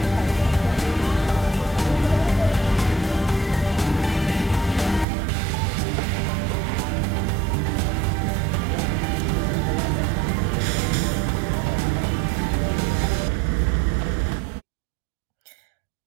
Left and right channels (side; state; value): left; drops out; at 5.1 s